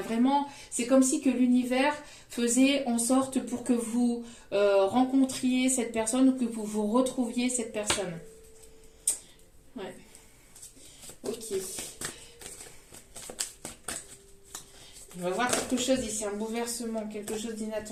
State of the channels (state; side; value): identical; both; correlation 1.00